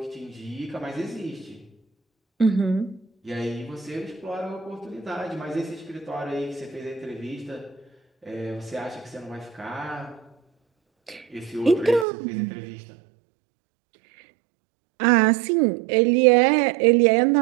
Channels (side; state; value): left; drops out; at 12.1 s